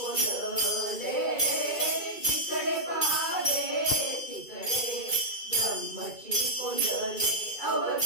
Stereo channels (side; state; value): right; late; 2.3 ms